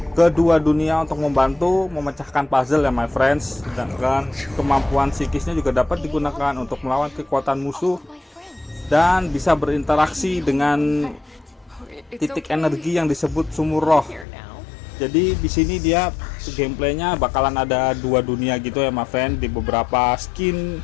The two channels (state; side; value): drops out; right; at 14.2 s